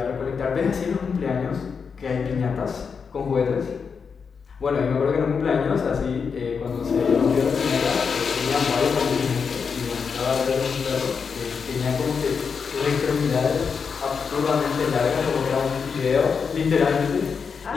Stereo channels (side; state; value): right; quieter; 5.9 dB